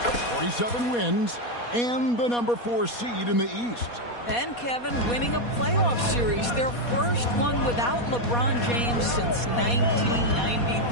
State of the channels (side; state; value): right; late; 4.2 ms